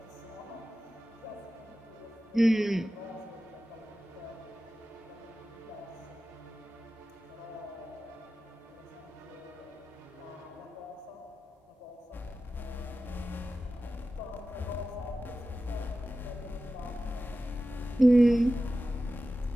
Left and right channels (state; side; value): normal; both; correlation 0.94